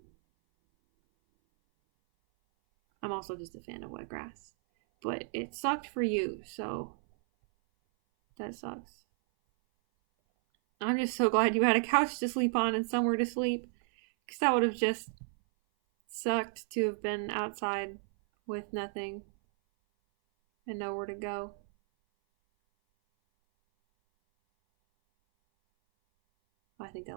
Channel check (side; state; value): left; silent; 56 dB below the other